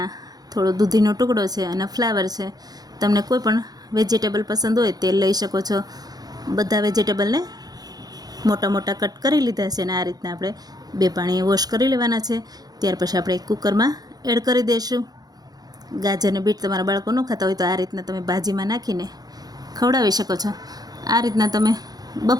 થોડો દૂધીનો ટુકડો છે અને ફ્લાવર છે. તમને કોઈ પણ વેજીટેબલ પસંદ હોય તે લઈ શકો છો. બધા વેજીટેબલને મોટા મોટા કટ કરી લીધા છે અને આ રીતના આપણે 2 પાણીએ વોશ કરી લેવાના છે. ત્યાર પછી આપણે એક કુકરમાં એડ કરી દઈશું. ગાજર અને બીટ તમારા બાળકો ન ખાતા હોય તો આ રીતના તમે ભાજીમાં નાખીને ખવડાવી શકો છો. આ રીતના તમે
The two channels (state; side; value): late; left; 0.19 ms